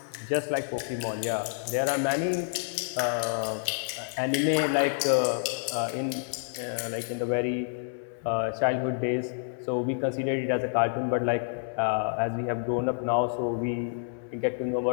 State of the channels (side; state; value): right; silent; 59 dB below the other